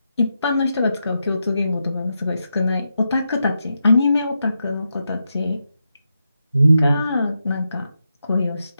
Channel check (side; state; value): both; inverted; correlation -0.85